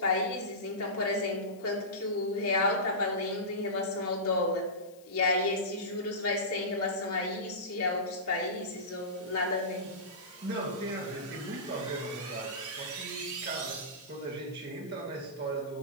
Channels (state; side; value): noise; left; hiss, 26 dB below the sound